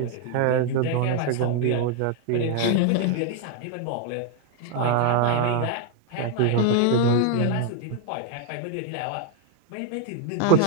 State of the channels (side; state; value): both; different; correlation 0.00